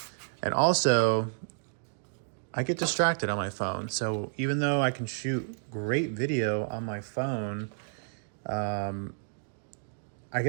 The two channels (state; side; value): silent; left; digital silence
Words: and also I get distracted on my phone. So even though I can shoot great video on my phone, I